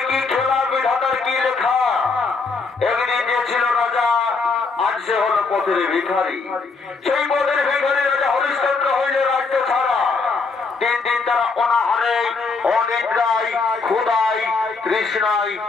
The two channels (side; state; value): right; quieter; 4.3 dB